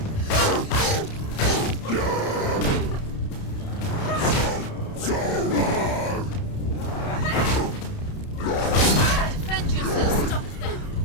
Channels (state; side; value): late; right; 30 ms